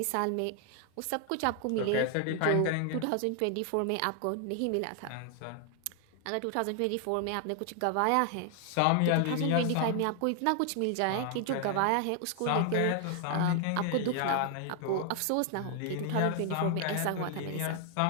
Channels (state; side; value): different; both; correlation 0.00